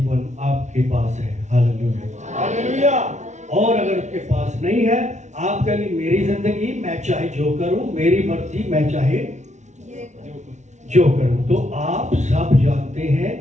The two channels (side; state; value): left; late; 0.34 ms